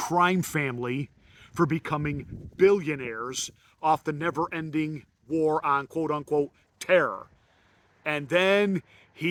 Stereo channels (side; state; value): both; identical; correlation 1.00